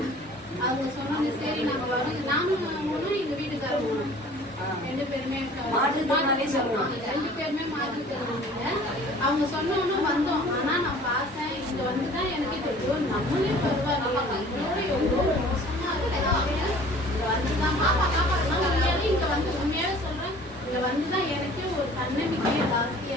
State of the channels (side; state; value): both; normal; correlation 0.49